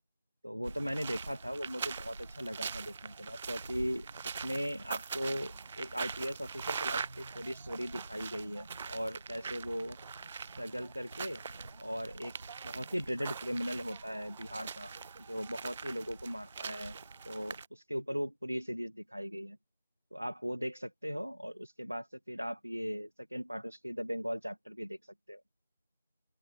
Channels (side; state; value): both; inverted; correlation -0.94